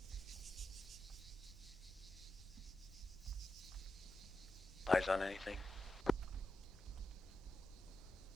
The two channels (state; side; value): noise; left; rumble, 19 dB below the sound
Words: Eyes on anything?